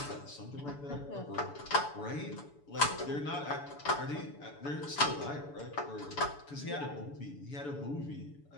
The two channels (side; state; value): right; late; 7.0 ms